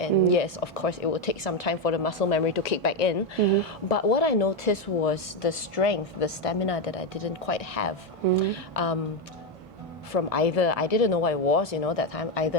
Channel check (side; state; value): both; normal; correlation 0.08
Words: and yes, of course, it will take some time for the muscle memory to kick back in. But what I noticed was the strength, the stamina that I didn't quite have from either I didn't know what it was, that time, either